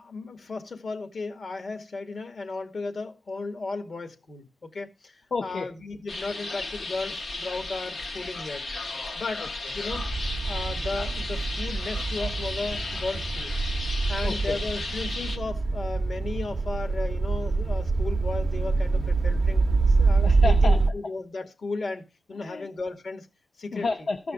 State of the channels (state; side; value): normal; both; correlation 0.91